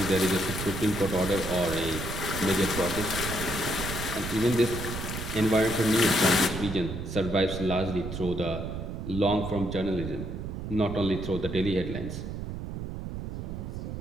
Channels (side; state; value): right; noise; rumble, 6 dB below the sound